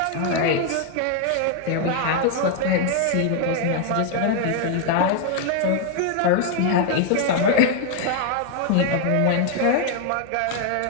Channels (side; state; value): both; different; correlation 0.00